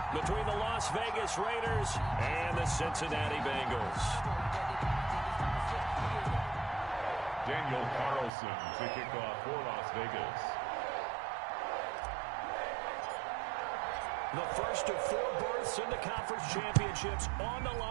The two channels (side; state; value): left; drops out; at 8.3 s